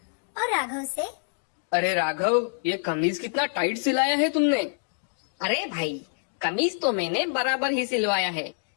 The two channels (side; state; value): right; silent; digital silence